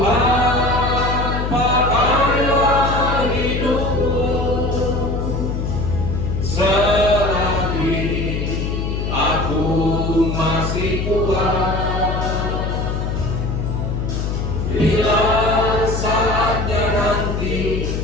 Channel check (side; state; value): left; noise; hum, 2 dB below the sound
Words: pakailah hidupku selagi masih kuat. Bila saatnya nanti